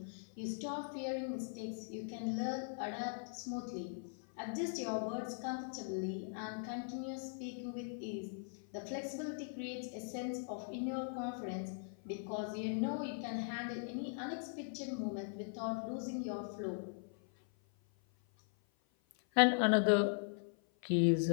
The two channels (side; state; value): right; silent; 51 dB below the other